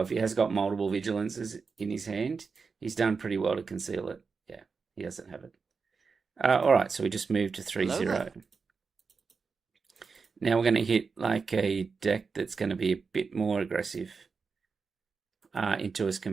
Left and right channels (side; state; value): left; quieter; 5.0 dB